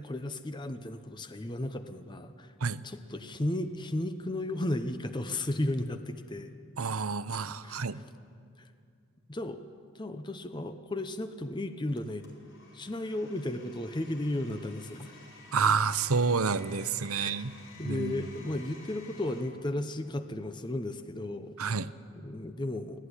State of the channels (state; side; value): normal; both; correlation 0.55